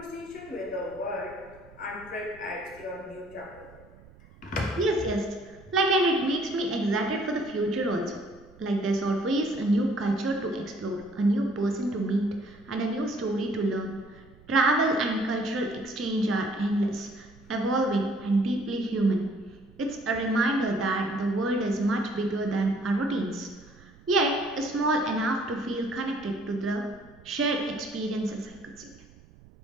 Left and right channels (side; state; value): right; noise; rumble, 24 dB below the sound